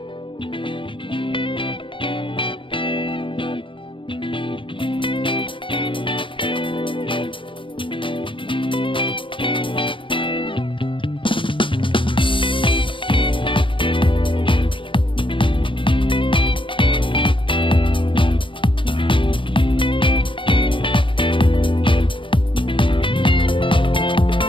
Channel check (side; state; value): right; late; 0.25 ms